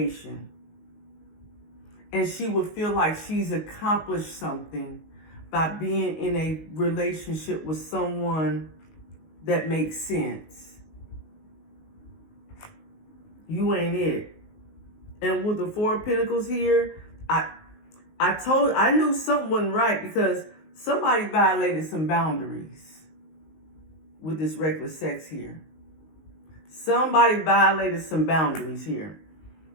And she would feel like she's accomplished something by being in a relationship with someone that makes sense. You ain't it. And with the 4 of Pentacles here, I knew something wasn't right because somebody violated some boundaries with this reckless sex here. Somebody violated some boundaries here.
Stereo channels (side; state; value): right; late; 19 ms